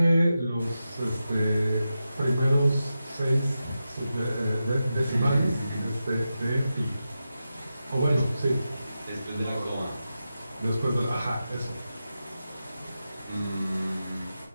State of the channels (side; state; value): both; inverted; correlation -0.91